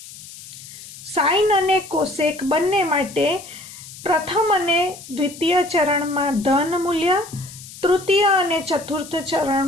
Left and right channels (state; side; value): noise; left; hiss, 16 dB below the sound